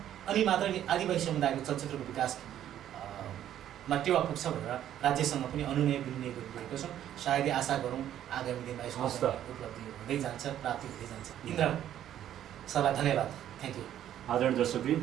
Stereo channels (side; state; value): left; quieter; 11.2 dB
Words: अनि मात्र आदिवासी समुदायको चलचित्रको विकासमा टेवा पुग्छ भनेर राज्यसँग पनि अनुनय विनिमय गरिरहेको छौँ। सायदै आशा गरौँ आगामी दिनमा यसको उपलब्धि हुँदै जान्छ, प्राप्ति हुँदै जान्छ। इन्द्र सरलाई धन्यवाद, थ्याङ्क यू। आदरणीय दर्शकवृन्द,